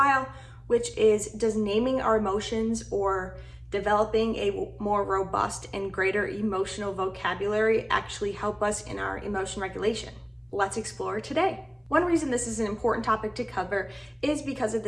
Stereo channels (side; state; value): both; identical; correlation 1.00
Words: which is, does naming our emotions or developing a more robust and greater emotional vocabulary actually help us in our emotion regulation? Let's explore today. One reason this is an important topic to cover is because of